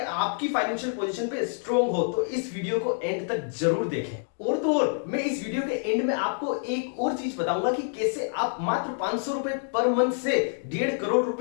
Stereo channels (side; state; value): right; silent; digital silence